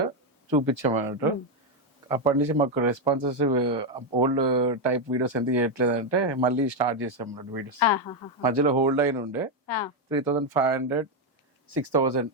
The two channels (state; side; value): normal; both; correlation 0.05